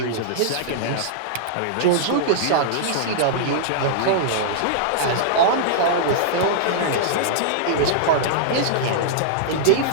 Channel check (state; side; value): different; both; correlation -0.02